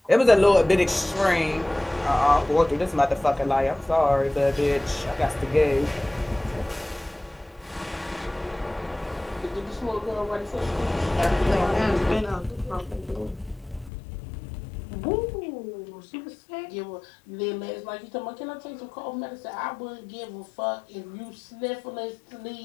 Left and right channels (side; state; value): right; drops out; at 13.9 s